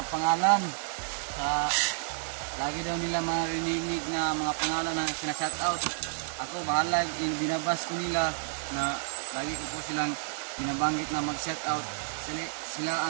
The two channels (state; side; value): silent; left; digital silence